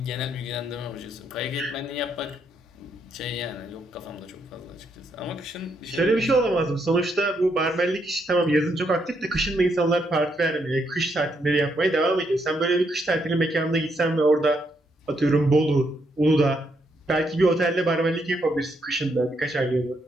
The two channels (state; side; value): normal; both; correlation 0.77